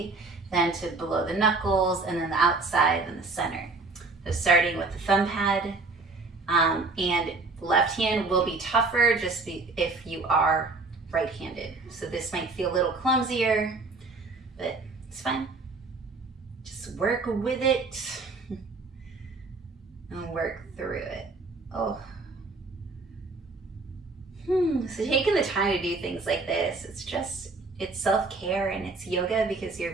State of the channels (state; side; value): quieter; left; 3.7 dB